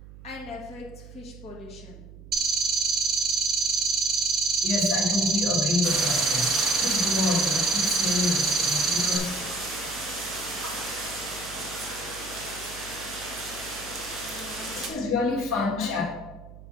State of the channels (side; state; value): right; noise; hum, 18 dB below the sound